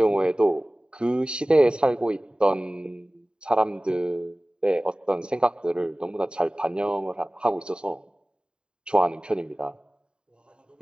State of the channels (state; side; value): late; left; 0.049 ms